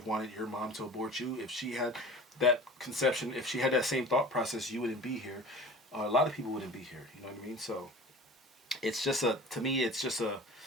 wanted your mom to abort you if she had that conception? If she had that same thought process, you wouldn't be here. A lot of people wouldn't be here. You know what I mean? So it's just to me, it's just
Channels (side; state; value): both; normal; correlation 0.40